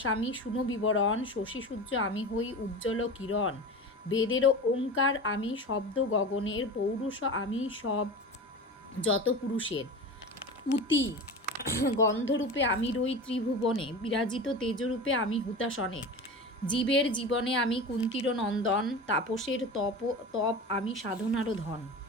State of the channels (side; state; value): both; normal; correlation 0.30